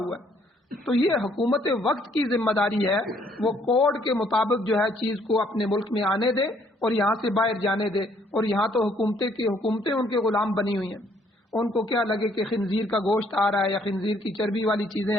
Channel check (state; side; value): normal; both; correlation 0.65